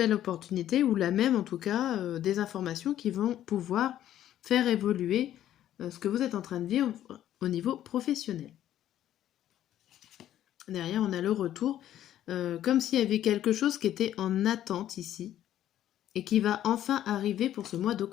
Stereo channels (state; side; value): quieter; right; 11.9 dB